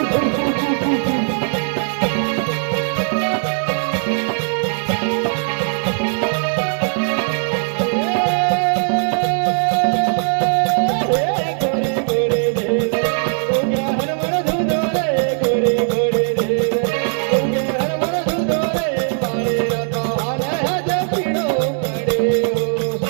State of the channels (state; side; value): silent; left; 57 dB below the other